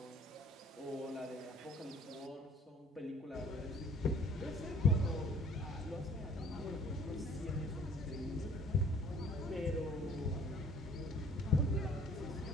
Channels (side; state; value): both; normal; correlation 0.54